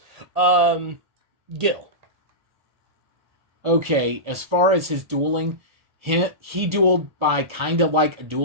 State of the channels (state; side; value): late; left; 1.4 ms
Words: Gil. Okay, as far as his dueling, he dueled by kind of like a